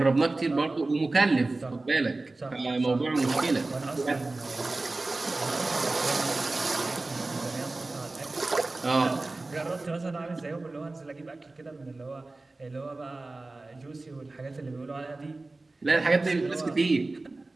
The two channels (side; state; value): left; quieter; 3.2 dB